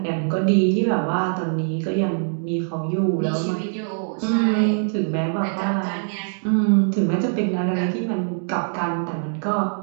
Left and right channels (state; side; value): silent; left; digital silence